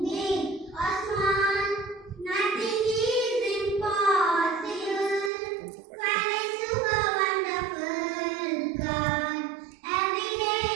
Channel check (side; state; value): left; drops out; at 5.3 s